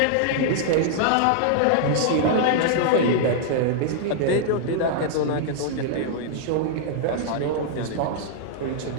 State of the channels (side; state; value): both; different; correlation -0.01